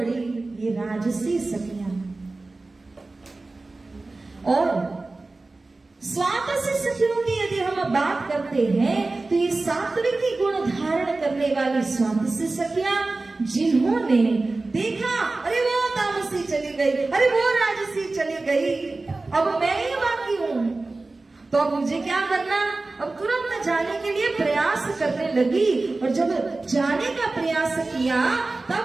ये राजसी सखियां। और स्वातसी सखियों की यदि हम बात करते हैं तो ये सात्विकी गुण धारण करने वाली स्वातसी सखियां, जिन्होंने देखा अरे वो तामसी चली गई, अरे वो राजसी चली गई, अब मैं ही बाकी हूं, तो अब मुझे क्या करना, अब तुरंत जाने के लिए प्रयास करने लगी। और जब जाने का प्रयास किया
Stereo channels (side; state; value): left; quieter; 3.3 dB